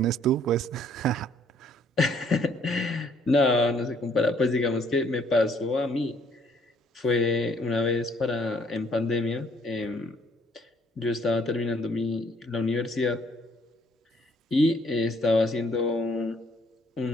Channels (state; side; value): normal; both; correlation 0.64